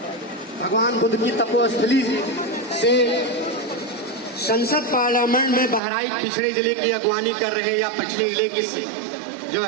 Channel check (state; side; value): drops out; left; at 5.8 s